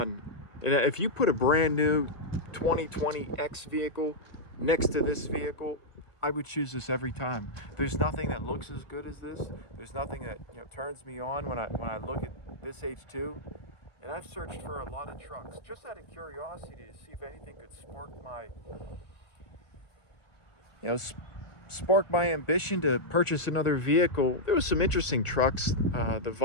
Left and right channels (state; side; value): late; right; 1.6 ms